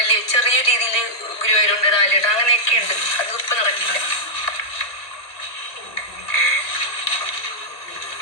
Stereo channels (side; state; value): right; late; 1.7 ms